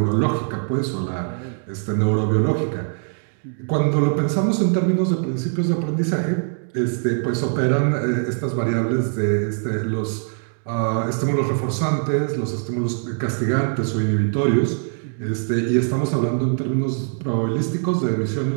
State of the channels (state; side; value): silent; left; 61 dB below the other